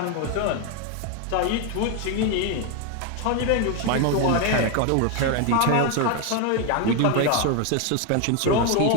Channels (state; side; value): different; both; correlation 0.01